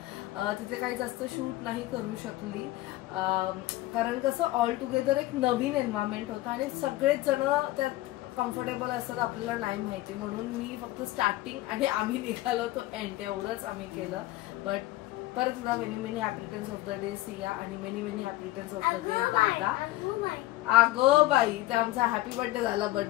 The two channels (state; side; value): quieter; right; 17.3 dB